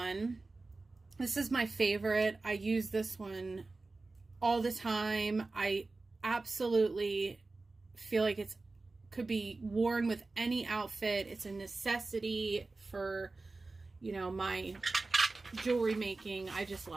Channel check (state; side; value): quieter; left; 3.5 dB